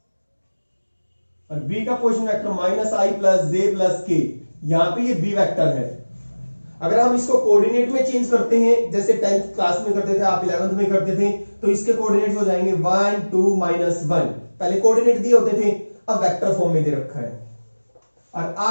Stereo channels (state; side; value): inverted; both; correlation -1.00